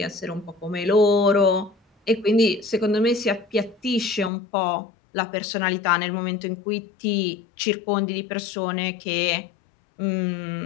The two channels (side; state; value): right; drops out; at 4.3 s